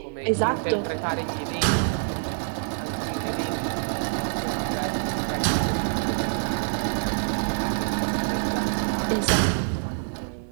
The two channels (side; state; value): left; silent; digital silence